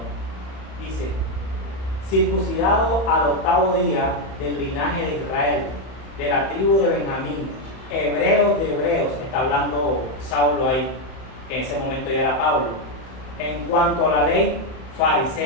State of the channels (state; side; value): late; right; 31 ms